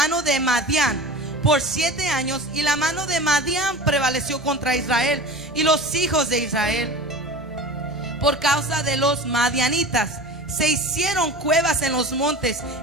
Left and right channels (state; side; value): normal; both; correlation 0.35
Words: de Madián por 7 años, y la mano de Madián prevaleció contra Israel y los hijos de Israel. Por causa de los madianitas se hicieron cuevas en los montes